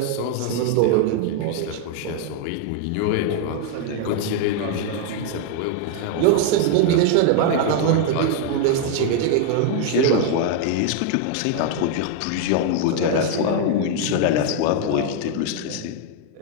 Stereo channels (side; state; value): both; different; correlation 0.00